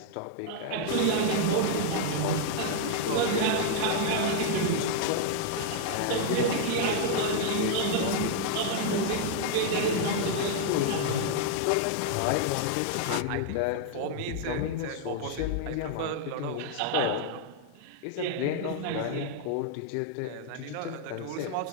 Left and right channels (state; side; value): different; both; correlation 0.00